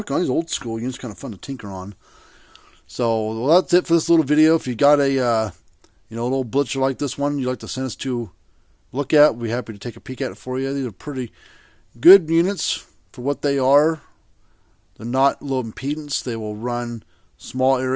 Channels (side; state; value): both; identical; correlation 1.00